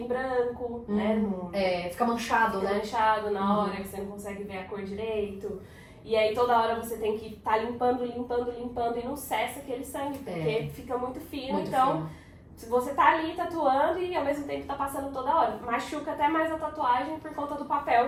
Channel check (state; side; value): identical; both; correlation 1.00